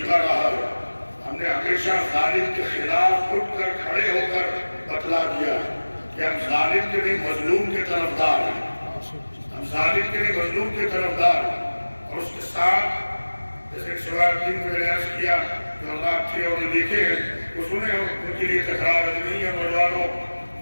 رہا ہے، ہم نے ہمیشہ ظالم کے خلاف اٹھ کر کھڑے ہو کر بتلا دیا کہ ہم ظالم کے نہیں مظلوم کے طرفدار ہیں، ہم ظالم کے نہیں مظلوم کے طرفدار ہیں۔ اور اس کے ساتھ جیسے شوائب دین میں نے عرض کیا جو اللہ تھے اور جو دیکھے ہیں وہ سنے، ان کے لیے تکرار نہیں ہے۔ نوجوانوں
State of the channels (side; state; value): both; inverted; correlation -1.00